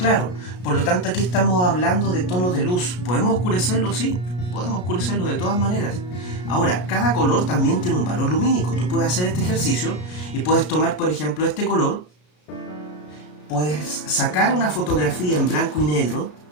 Por lo tanto, aquí estamos hablando de tonos de luz. ¿Podemos oscurecerlo? Sí, podemos oscurecerlo de todas maneras. Ahora, cada color también tiene un valor lumínico. Tú puedes hacer este ejercicio y puedes tomar, por ejemplo, este color, puedes sacar una fotografía en blanco y negro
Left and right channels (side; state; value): right; late; 33 ms